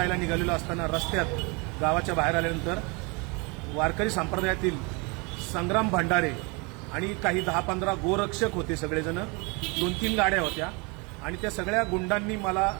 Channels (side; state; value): left; quieter; 29.5 dB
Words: निघालेलो असताना रस्त्यात गावाच्या बाहेर आल्यानंतर वारकरी संप्रदायातील संग्राम भंडारे आणि काही 10-15 गोरक्षक होते, सगळेजण 2-3 गाड्या होत्या आणि त्या सगळ्या गुंडांनी मला